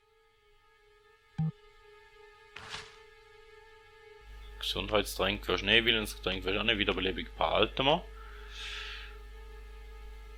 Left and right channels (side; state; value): both; identical; correlation 1.00